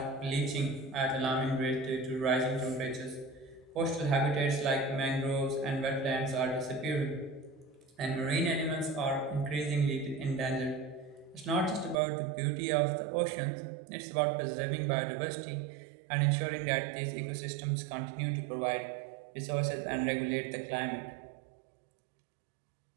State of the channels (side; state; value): left; drops out; at 12.0 s